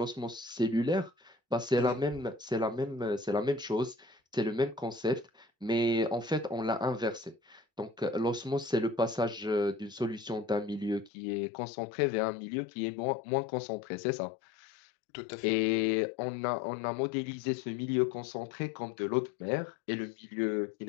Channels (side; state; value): right; drops out; at 11.1 s